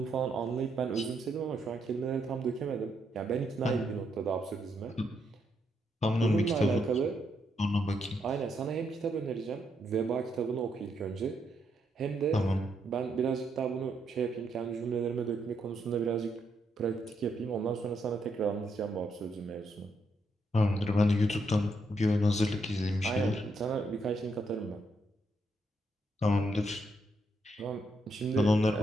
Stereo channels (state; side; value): normal; both; correlation 0.78